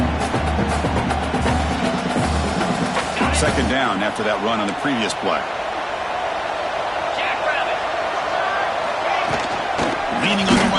Second down after that run on the previous play. Leaning on the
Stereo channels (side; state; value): both; identical; correlation 1.00